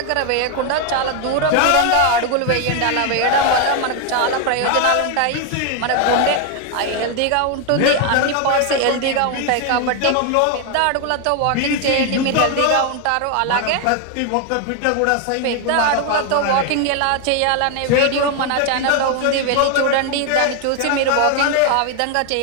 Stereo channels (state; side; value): different; both; correlation 0.01